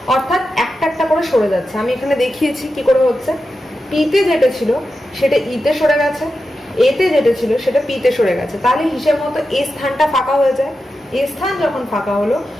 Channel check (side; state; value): both; normal; correlation 0.90